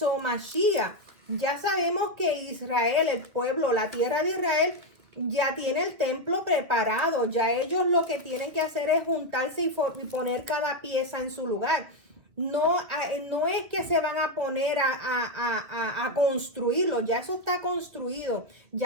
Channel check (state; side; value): late; left; 2.3 ms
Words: Mashiach. Ya sabemos que Israel, el pueblo, la tierra de Israel, ya tiene el templo preparado. Ya ellos lo que tienen que hacer es juntarse y poner cada pieza en su lugar. No es que se van a poner a construirlo, ya eso está construido.